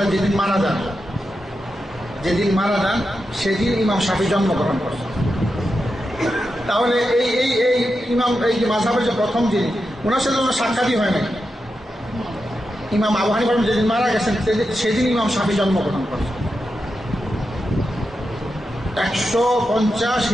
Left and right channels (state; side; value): normal; both; correlation 0.88